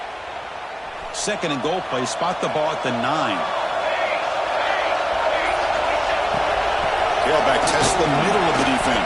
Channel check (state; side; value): identical; both; correlation 1.00